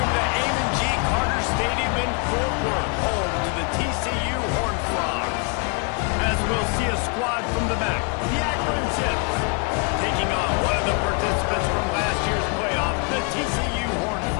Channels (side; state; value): right; quieter; 34.4 dB